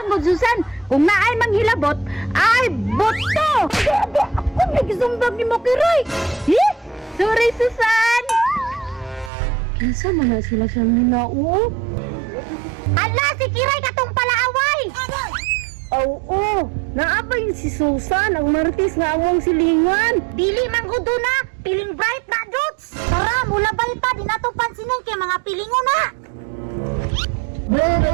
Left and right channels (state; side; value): drops out; left; at 9.3 s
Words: mo Susan, kung naay manghilabot, ay boto. Ako nagsumbag ni mo Kiray! Eh? Sorry Susan. Kinsa man na sila sa mina oh. Ala, si Kiray katong palaaway! Oo, naabay si Susan, ang martis nga awang silingan. Dili man gudo na, piling bright na dots! Tara, mula ba ita, di na to pansinin kay mga pilingo na!